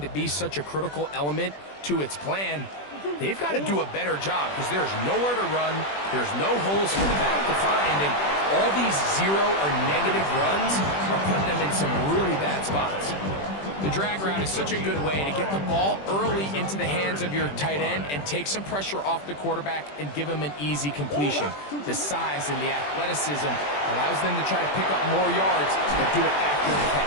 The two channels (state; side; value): late; right; 21 ms